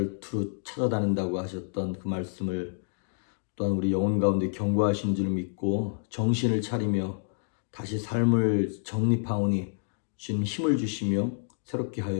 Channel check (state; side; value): silent; right; digital silence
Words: 두루 찾아다닌다고 하셨던 그 말씀을 또한 우리 영혼 가운데 경고하신 줄 믿고 정신을 차리며 다시 삶을 정립하오니 주님 힘을 주시며 새롭게